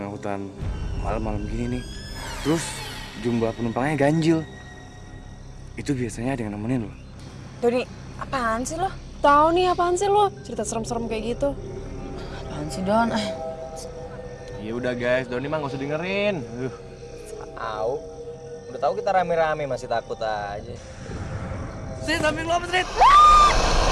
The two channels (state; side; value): identical; both; correlation 1.00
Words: hutan malam-malam gini nih, terus jumlah penumpangnya ganjil, itu biasanya ada yang nemenin loh. Doni, apaan sih lo? Tahu nih apaan sih lo? Cerita serem-serem kayak gitu. Apaan sih, Don? Ya udah guys, Doni mah nggak usah dengerin. Au. Udah tahu kita rame-rame masih takut aja. Sini samping lo apa, Srit?